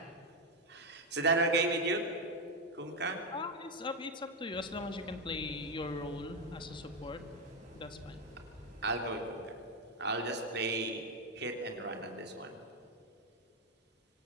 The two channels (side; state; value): both; normal; correlation 0.07